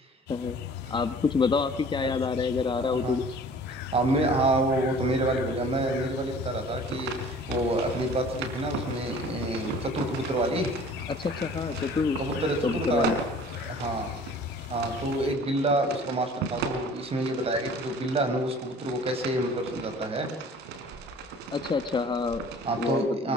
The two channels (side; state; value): both; normal; correlation 0.48